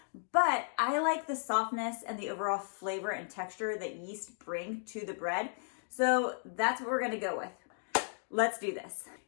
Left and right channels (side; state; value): right; silent; digital silence